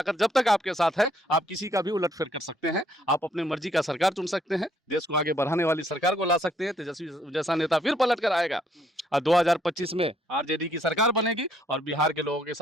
जब तक आपके साथ है आप किसी का भी उलटफेर कर सकते हैं। आप अपने मर्जी का सरकार चुन सकते हैं, देश को आगे बढ़ाने वाली सरकार को ला सकते हैं। तेजस्वी जैसा नेता फिर पलट कर आएगा और 2025 में आरजेडी की सरकार बनेगी और बिहार के लोगों के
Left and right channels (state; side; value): normal; both; correlation 0.68